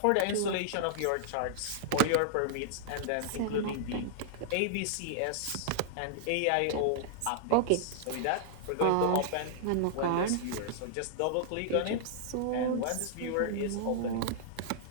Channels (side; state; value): both; different; correlation -0.01